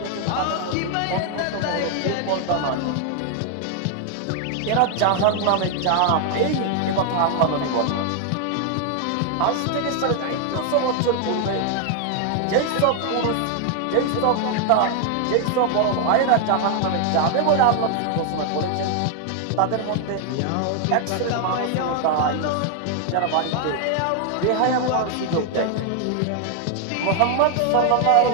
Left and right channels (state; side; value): different; both; correlation 0.00